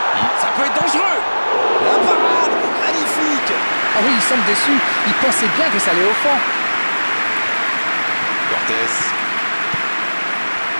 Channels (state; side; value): inverted; both; correlation -1.00